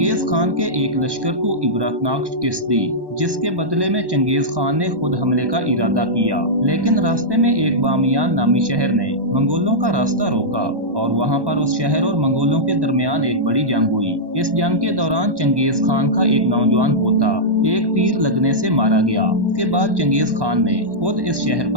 खान के एक लश्कर को इबरतनाक शिकस्त दी, जिसके बदले में चंगेज खान ने खुद हमले का इरादा किया, लेकिन रास्ते में एक बामियान नामी शहर ने मंगोलों का रास्ता रोका और वहां पर उस शहर और मंगोलों के दरमियान एक बड़ी जंग हुई। इस जंग के दौरान चंगेज खान का एक नौजवान पोता एक तीर लगने से मारा गया। इसके बाद चंगेज खान ने खुद इस शहर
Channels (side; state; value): left; late; 1.1 ms